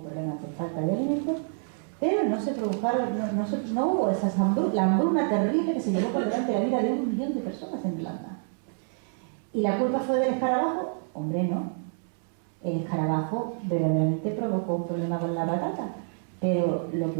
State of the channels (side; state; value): left; silent; 60 dB below the other